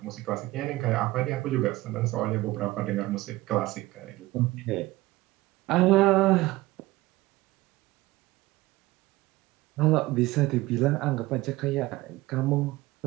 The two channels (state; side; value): quieter; left; 18.8 dB